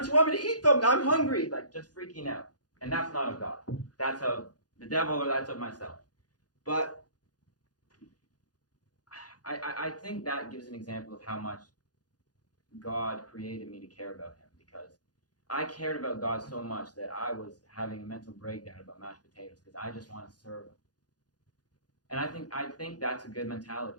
you want me to eat them? I'm hungry. Like, just freaking out. And that's not of God. That's of the devil, or that's of myself. But I think that gives an example of how much God created me to care about Him, because I cared about God so much that I was having a mental breakdown about mashed potatoes because I just want to serve Him. And I think that's a good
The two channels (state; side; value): late; right; 0.69 ms